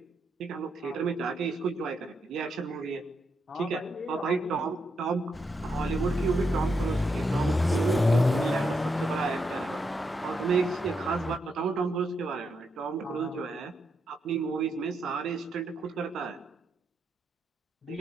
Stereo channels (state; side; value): normal; both; correlation 0.81